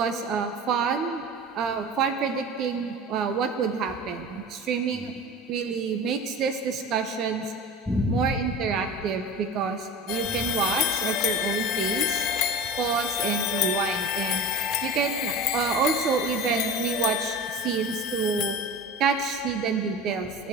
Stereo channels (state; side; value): normal; both; correlation 0.33